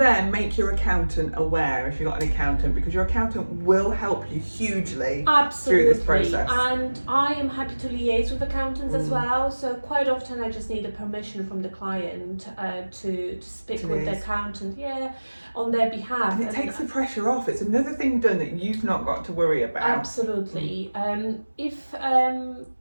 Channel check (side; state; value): both; inverted; correlation -1.00